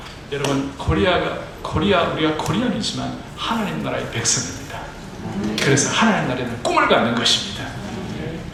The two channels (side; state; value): both; identical; correlation 1.00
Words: 여러분 우리가 코리안이지만 하나님 나라의 백성입니다. 그래서 하나님 나라에 대한 꿈을 갖는 것입니다.